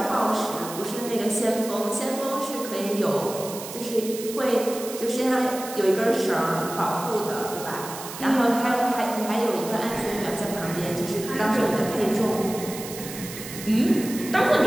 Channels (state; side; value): noise; right; hiss, 11 dB below the sound